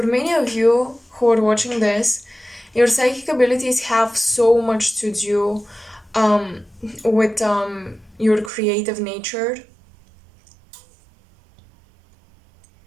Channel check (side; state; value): left; drops out; at 8.5 s